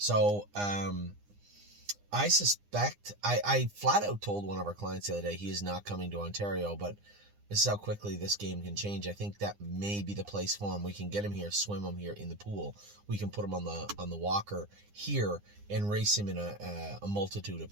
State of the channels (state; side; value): late; left; 9.8 ms